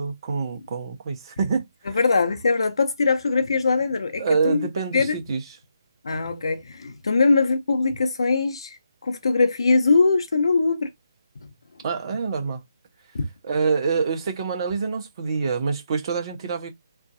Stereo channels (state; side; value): inverted; both; correlation -0.82